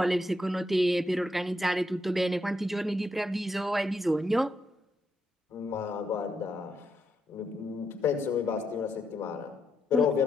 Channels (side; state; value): both; normal; correlation 0.81